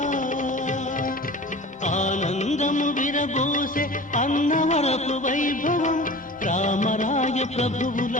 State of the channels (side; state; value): both; normal; correlation 0.38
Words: ఆనందము విరబూసే అన్నవరపు వైభవం రామరాయ ప్రభువుల